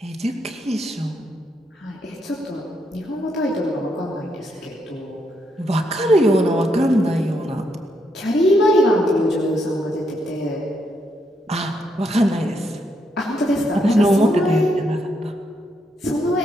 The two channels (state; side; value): normal; both; correlation 0.77